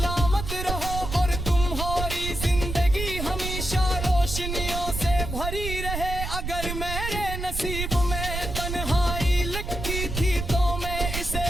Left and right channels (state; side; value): noise; right; rumble, 5 dB below the sound